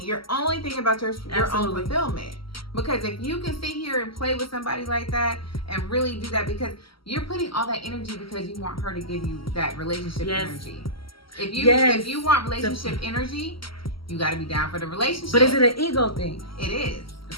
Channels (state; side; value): late; right; 0.75 ms